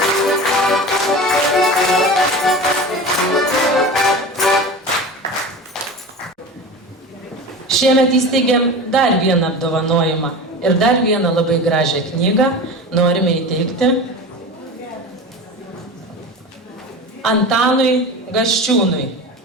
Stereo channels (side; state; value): both; normal; correlation 0.31